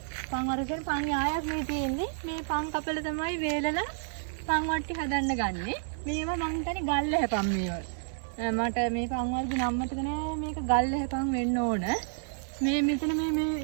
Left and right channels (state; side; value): silent; left; 58 dB below the other